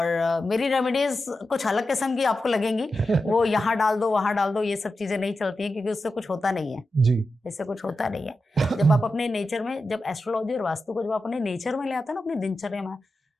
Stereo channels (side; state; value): both; normal; correlation 0.91